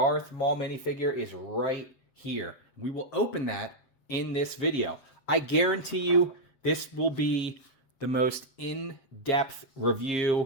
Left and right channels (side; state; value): right; late; 7.4 ms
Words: Maul minifigure is right here. We will open that in this video. I guarantee you this will be the most in-depth